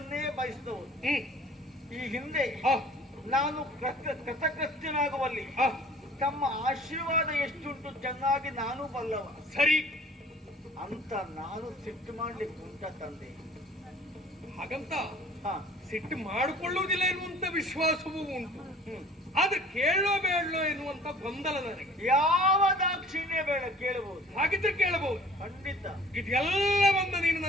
ಬಯಸಿದವರು ಈ ಹಿಂದೆ ನಾನು ಕೃತಕೃತ್ಯನಾಗುವಲ್ಲಿ ತಮ್ಮ ಆಶೀರ್ವಾದ ಎಷ್ಟುಂಟು ಚೆನ್ನಾಗಿ ನಾನು ಬಲ್ಲವ. ಸರಿ ಅಂತ ನಾನು ಸಿಟ್ಟು ಮಾಡ್ಲಿಕ್ಕೆ ಉಂಟ ತಂದೆ. ಹಾಗಂತ ಹಾ ಸಿಟ್ಟು ಮಾಡಿಕೊಳ್ಳುವುದಿಲ್ಲ ಎನ್ನುವಂತ ವಿಶ್ವಾಸವೂ ಉಂಟು. ಆದ್ರೆ ಕೇಳೋ ಬೇಡಲೋ ಎನ್ನುವಂತ ಗೊಂದಲ ನನಗೆ. ಯಾವ ದಾಕ್ಷಿಣ್ಯ ಬೇಡ, ಕೇಳಬಹುದು. ಹಾಗಿದ್ರೆ ಕೇಳಬಹುದು, ಖಂಡಿತ. ಇದೆಲ್ಲವನ್ನ ನೀನು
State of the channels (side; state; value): both; normal; correlation 0.49